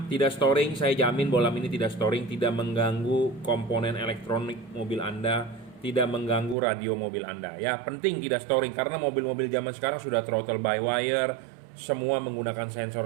tidak storing. Saya jamin bohlam ini tidak storing, tidak mengganggu komponen elektronik mobil Anda, tidak mengganggu radio mobil Anda ya. Penting tidak storing karena mobil-mobil zaman sekarang sudah throttle by wire, semua menggunakan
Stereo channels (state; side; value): drops out; left; at 6.6 s